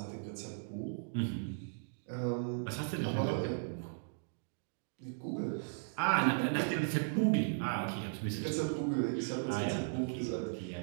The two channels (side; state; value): left; silent; digital silence